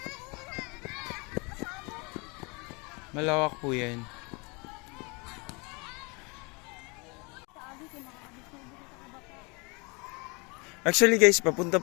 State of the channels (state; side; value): quieter; right; 29.6 dB